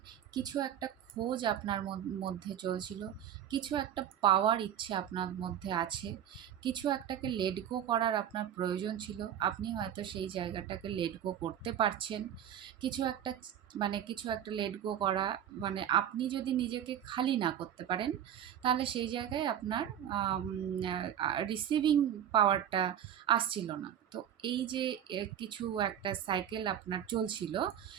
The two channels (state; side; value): quieter; left; 10.0 dB